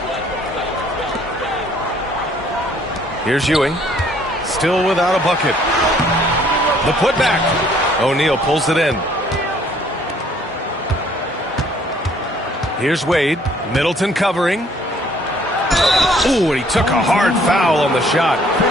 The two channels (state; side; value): normal; both; correlation 0.61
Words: Here's Ewing. Still without a bucket. The putback. O'Neal pulls it in. Here's Wade. Middleton covering. Ooh, and he took a hard foul on the shot.